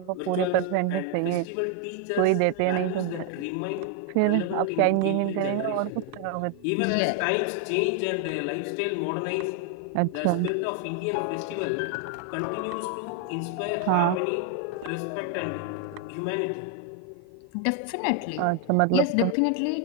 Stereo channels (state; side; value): different; both; correlation 0.01